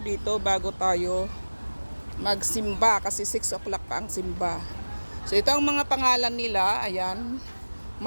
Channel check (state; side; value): inverted; both; correlation -1.00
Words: bago tayo magsimba kasi 6 o'clock pa ang simba. So ito ang mga pangalan nila. Ayan,